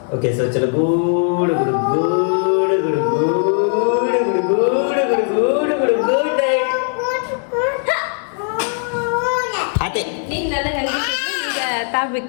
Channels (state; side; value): silent; right; 56 dB below the other